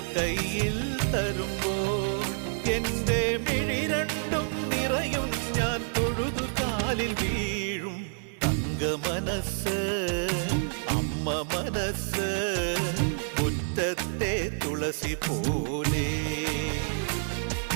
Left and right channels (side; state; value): left; silent; 56 dB below the other